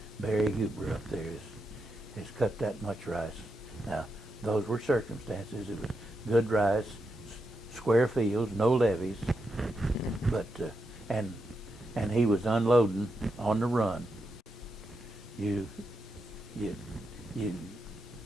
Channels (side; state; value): both; normal; correlation 0.85